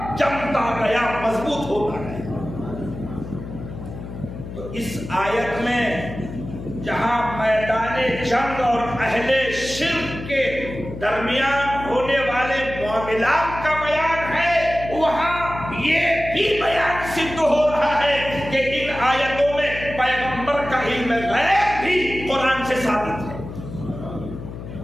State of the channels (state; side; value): noise; left; hum, 10 dB below the sound